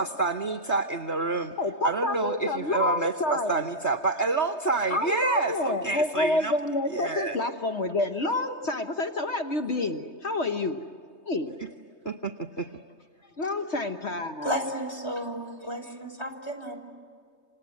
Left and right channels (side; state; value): right; late; 3.2 ms